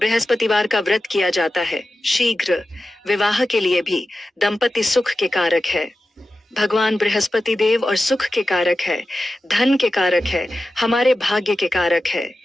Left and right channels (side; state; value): both; normal; correlation 0.93